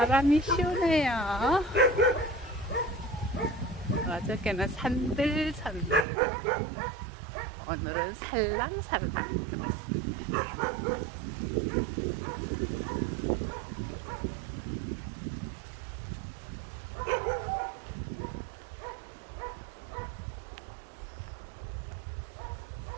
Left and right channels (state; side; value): drops out; left; at 6.1 s